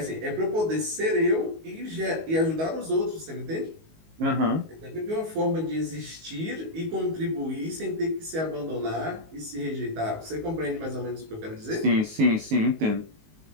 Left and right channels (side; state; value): left; late; 19 ms